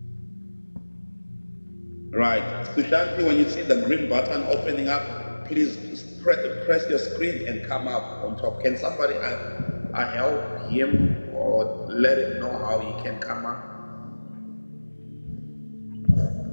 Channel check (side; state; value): both; inverted; correlation -1.00